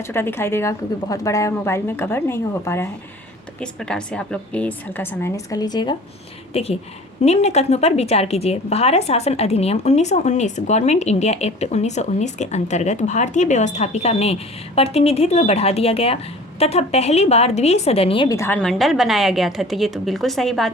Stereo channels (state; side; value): normal; both; correlation 0.44